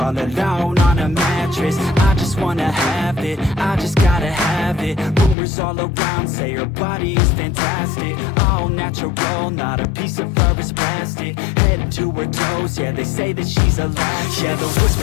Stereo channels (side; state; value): right; drops out; at 5.4 s